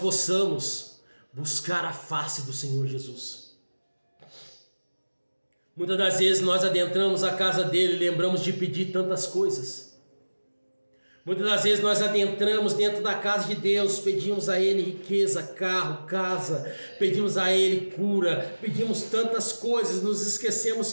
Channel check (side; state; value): both; inverted; correlation -1.00